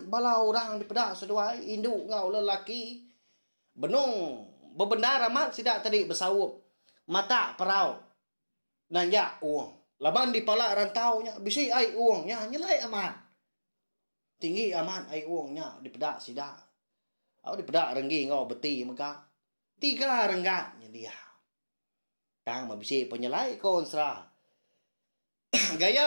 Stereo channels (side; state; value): both; inverted; correlation -1.00